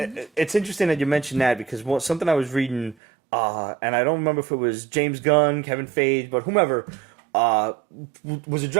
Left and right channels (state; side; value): drops out; left; at 3.0 s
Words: interesting that you mentioned that because something I was reading, and I don't remember if it was James Gunn, Kevin Feige, but whomever, was